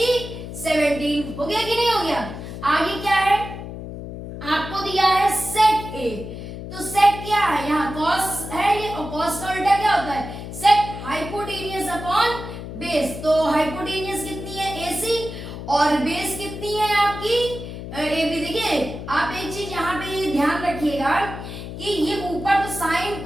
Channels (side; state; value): left; noise; hum, 9 dB below the sound